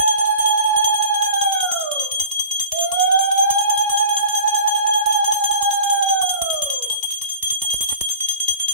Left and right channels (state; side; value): inverted; both; correlation -0.42